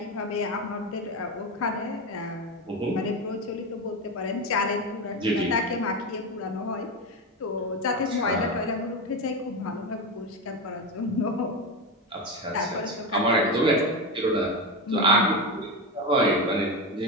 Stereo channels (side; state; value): both; normal; correlation 0.16